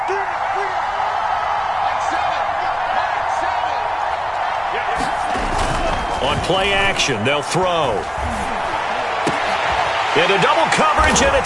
On play action, they'll throw. Into double coverage, and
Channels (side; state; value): both; identical; correlation 1.00